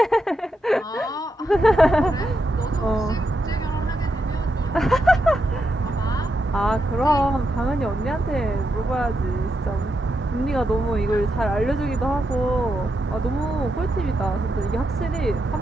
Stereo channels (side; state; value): both; normal; correlation 0.84